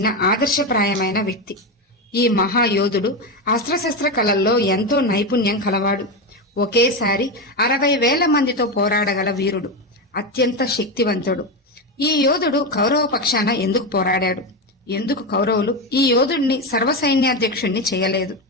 ఆదర్శప్రాయమైన వ్యక్తి. ఈ మహాయోధుడు అస్త్రశస్త్ర కళల్లో ఎంతో నైపుణ్యం కలవాడు. ఒకేసారి 60,000 మందితో పోరాడగల వీరుడు, అత్యంత శక్తివంతుడు. ఈ యోధుడు కౌరవ పక్షాన ఎందుకు పోరాడాడు? ఎందుకు కౌరవులు ఈ యోధుడిని సర్వసైన్యాధ్యక్షుణ్ణి చేయలేదు?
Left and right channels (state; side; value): normal; both; correlation 0.14